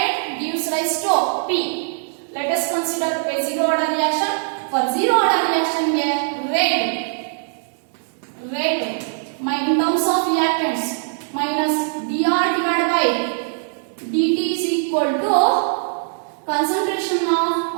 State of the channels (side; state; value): left; silent; digital silence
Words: gives rise to P. Let us consider a zero order reaction. For zero order reaction rate in terms of reactants minus dr divided by dt is equal to concentration of